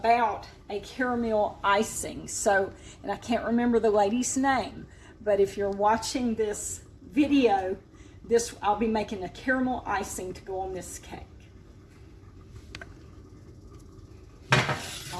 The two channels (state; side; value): identical; both; correlation 1.00